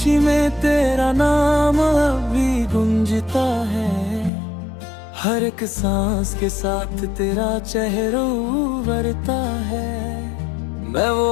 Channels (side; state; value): right; drops out; at 4.3 s